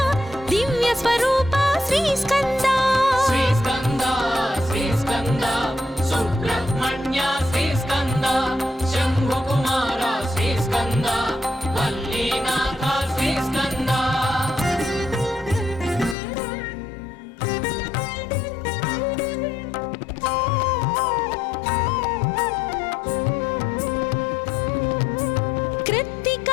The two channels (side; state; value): right; drops out; at 16.2 s